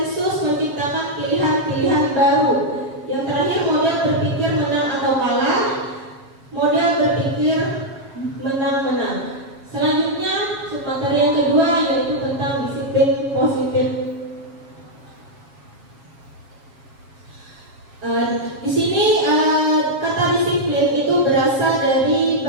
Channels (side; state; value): left; late; 7.3 ms